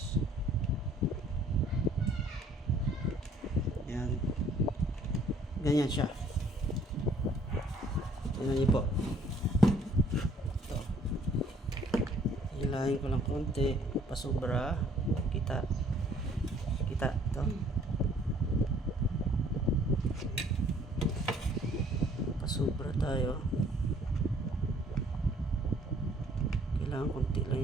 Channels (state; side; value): normal; both; correlation 0.59